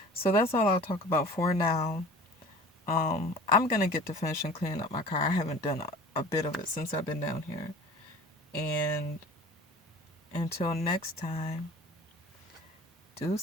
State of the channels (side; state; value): both; normal; correlation 0.43